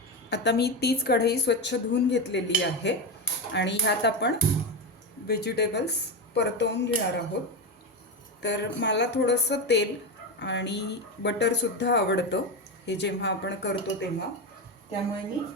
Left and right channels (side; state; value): both; normal; correlation 0.15